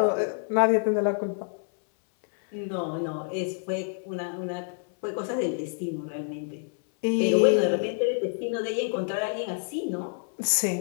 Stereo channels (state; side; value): silent; right; 60 dB below the other